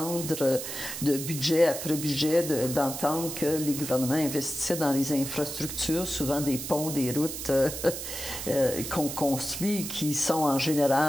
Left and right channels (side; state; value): right; noise; hiss, 7 dB below the sound